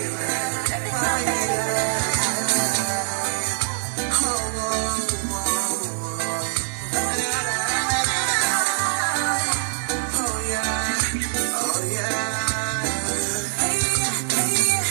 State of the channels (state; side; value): silent; left; 62 dB below the other